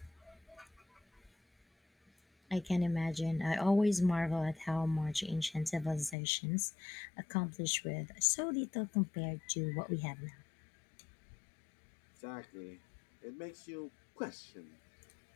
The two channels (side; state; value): right; drops out; at 6.2 s